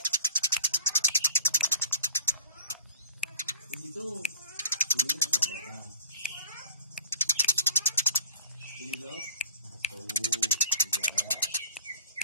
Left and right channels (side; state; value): both; inverted; correlation -0.48